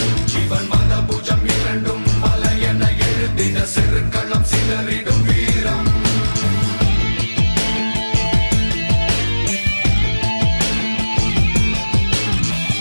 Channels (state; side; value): inverted; both; correlation -1.00